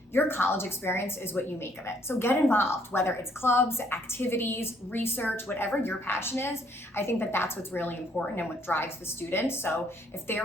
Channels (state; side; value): normal; both; correlation 0.66